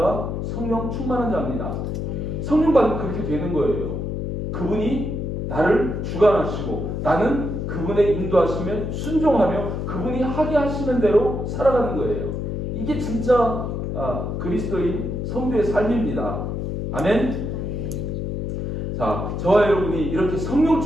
성령 충만한 자입니다. 성령 받으면 그렇게 되는 거예요. 그분이 나를 주관하시고 나는 그분의 인도하시면 순종하며 그분이 하게 하시는 대로 살아가는 거예요. 이게 진짜 그리스도인 성도의 삶입니다. 아멘. 자, 저와 여러분이 이렇게 성령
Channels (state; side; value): noise; left; hum, 3 dB below the sound